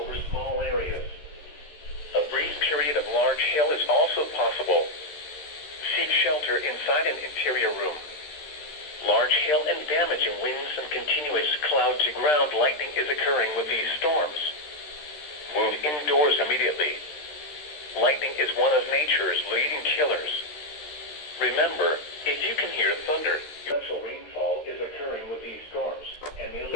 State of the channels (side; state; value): right; late; 13 ms